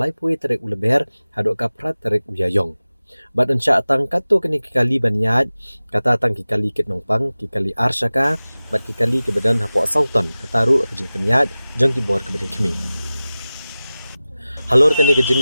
pui terek uleber hadok kaprat terek uyayong. Bat ensya tang katu kani ki kali ban ya kata tang ki kali kit nongpang ki kali arsyaka bat ki kali ke badan hapo sauton kataru kajing penyat jong ki bor ke badan kemi. Halor kani kejing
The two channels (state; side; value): inverted; both; correlation -0.97